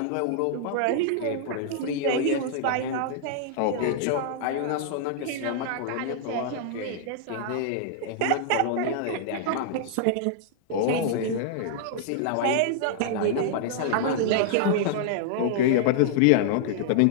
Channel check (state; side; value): different; both; correlation -0.01